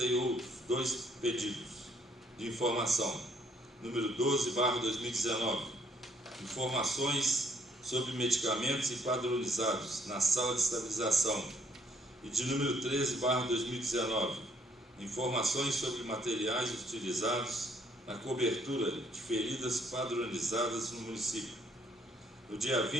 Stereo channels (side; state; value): both; normal; correlation 0.66